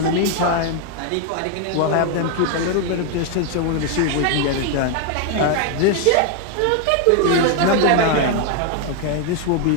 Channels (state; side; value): different; both; correlation 0.00